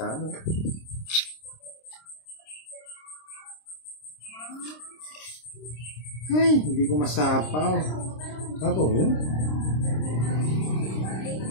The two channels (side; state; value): right; late; 26 ms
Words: ano. Ay, hindi ko masapaw. Sapo mo?